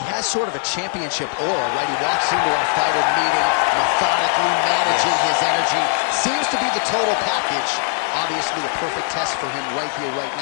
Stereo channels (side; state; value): right; silent; 55 dB below the other